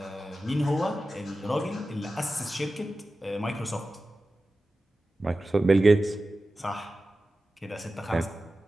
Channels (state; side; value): normal; both; correlation 0.94